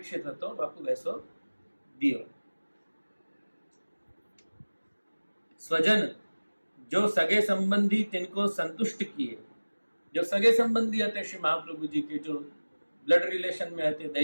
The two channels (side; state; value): both; inverted; correlation -1.00